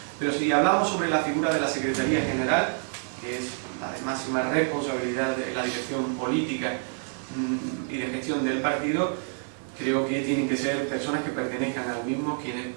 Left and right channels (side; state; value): left; silent; 60 dB below the other